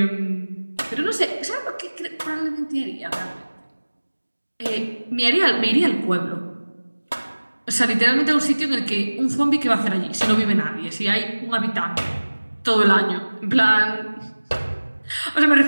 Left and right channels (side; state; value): both; inverted; correlation -1.00